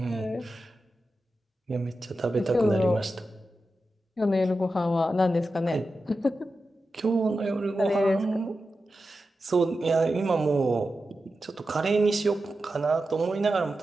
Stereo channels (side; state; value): both; normal; correlation 0.91